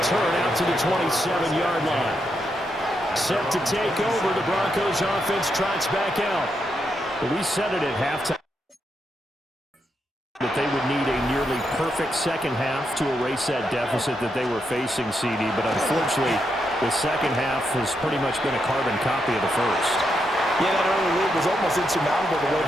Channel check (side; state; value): both; normal; correlation 0.82